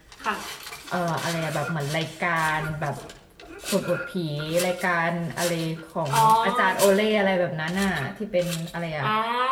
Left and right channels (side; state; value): both; identical; correlation 1.00